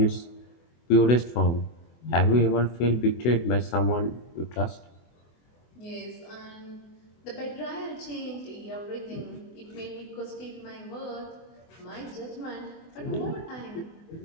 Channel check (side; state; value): right; late; 24 ms